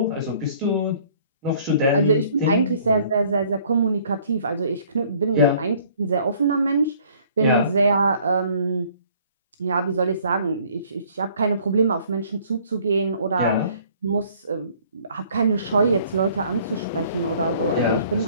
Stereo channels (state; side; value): inverted; both; correlation -0.57